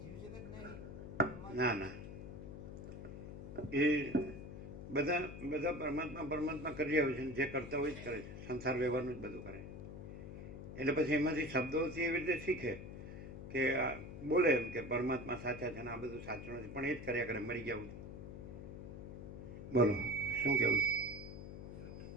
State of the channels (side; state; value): left; noise; hum, 10 dB below the sound